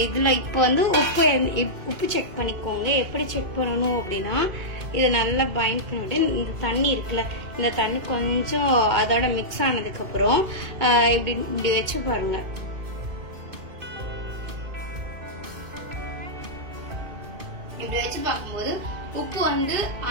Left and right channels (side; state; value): left; late; 2.2 ms